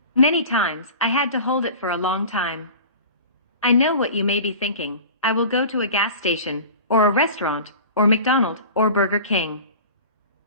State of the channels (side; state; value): both; inverted; correlation -0.38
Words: Many times, I had to hold it for a long time. I know what you may be thinking. I will go to a gas station, or a restaurant, or McDonald's, or Burger King.